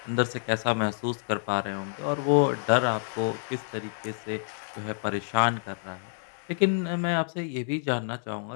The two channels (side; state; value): right; silent; 56 dB below the other